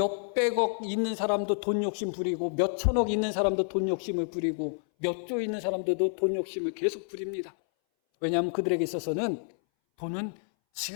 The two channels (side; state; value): right; silent; 59 dB below the other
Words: 있는 사람도 돈 욕심 부리고 몇천억 있는 사람도 돈 욕심을 부리고 몇 조 있는 사람들도 돈 욕심을 계속 부립니다. 왜냐하면 그들에게 있어서는 돈은